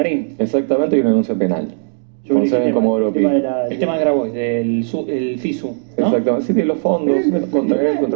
Exactamente, y una denuncia penal. Sobre Con sede el en tema- Comodoro el tema Pi. de la- El tema de Grabois, del el FISU, ¿no? Exactamente, sí, de los fondos, contra él,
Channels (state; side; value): silent; left; digital silence